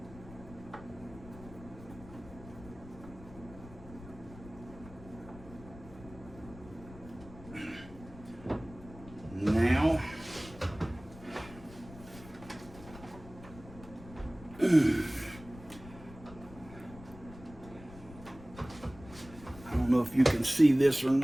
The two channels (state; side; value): noise; left; rumble, 17 dB below the sound